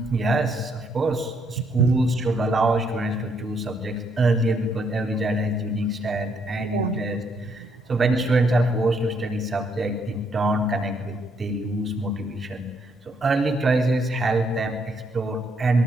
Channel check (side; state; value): both; normal; correlation 0.72